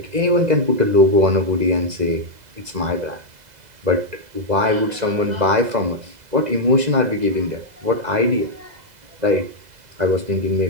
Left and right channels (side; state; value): left; late; 2.0 ms